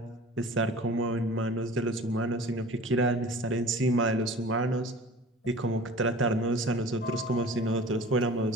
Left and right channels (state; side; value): normal; both; correlation 0.41